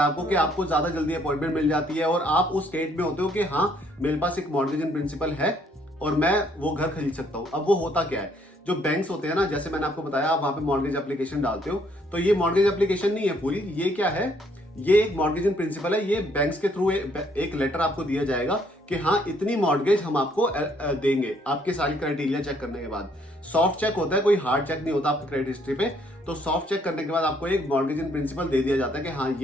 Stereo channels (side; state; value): both; normal; correlation 0.67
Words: है आपको कि आपको ज्यादा जल्दी अपॉइंटमेंट मिल जाती है और आप उस स्टेट में होते हो कि हाँ मेरे पास एक मॉर्गेज इन प्रिंसिपल है और मैं वो घर खरीद सकता हूँ। अब वो होता क्या है, जो बैंक्स होते हैं ना, जैसे मैंने आपको बताया, आप वहां पे मॉर्गेज एप्लीकेशन डालते हो, तो ये मॉर्गेज एप्लीकेशन नहीं है पूरी, ये क्या है, ये एक मॉर्गेज इन प्रिंसिपल है। ये बैंक्स के थ्रू एक लेटर आपको दिया जाएगा कि हाँ इतनी मॉर्गेज हम आपको देंगे, आपके सारी क्राइटेरिया चेक करने के बाद। सॉफ्ट चेक होता है, कोई हार्ड चेक नहीं होता आपकी क्रेडिट हिस्ट्री पे। तो सॉफ्ट चेक करने के बाद आपको एक मॉर्गेज इन प्रिंसिपल दे दिया जाता है कि हाँ